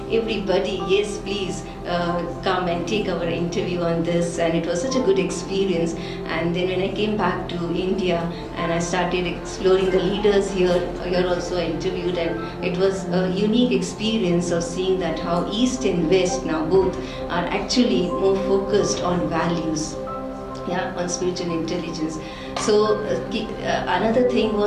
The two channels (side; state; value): both; identical; correlation 1.00